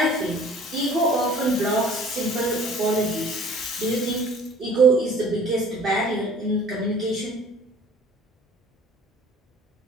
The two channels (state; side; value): normal; both; correlation 0.50